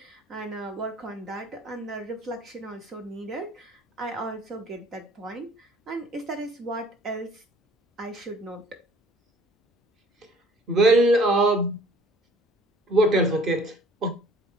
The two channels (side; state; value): both; normal; correlation 0.54